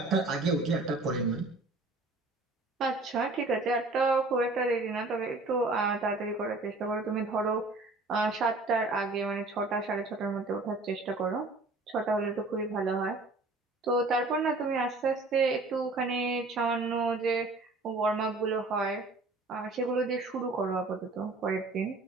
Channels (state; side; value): quieter; left; 3.2 dB